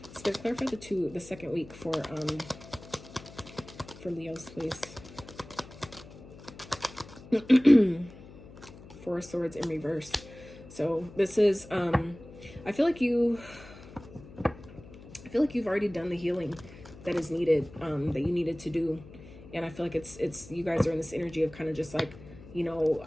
Spirit, clarify the second week for Leos, please. Four of Swords in reverse. So this is I feel like you've already done the healing that is needed, that you needed to do. And I feel like it's you guys are in this energy of kind of just like, you know,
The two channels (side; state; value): left; noise; hum, 18 dB below the sound